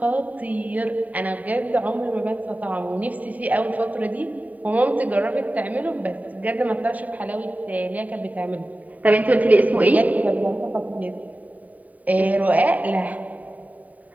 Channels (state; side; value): late; left; 0.073 ms